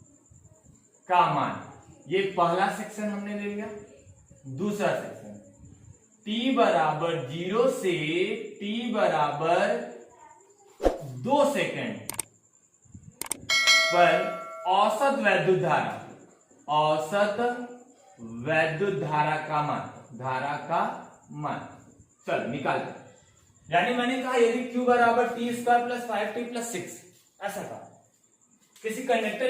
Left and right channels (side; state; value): both; identical; correlation 1.00